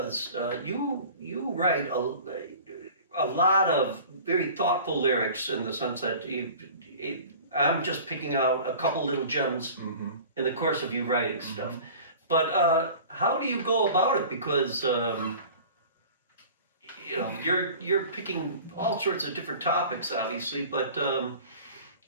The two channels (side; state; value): both; inverted; correlation -0.42